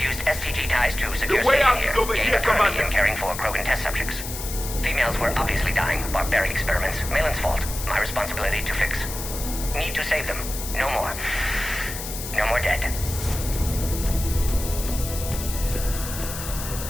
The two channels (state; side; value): noise; left; hiss, 8 dB below the sound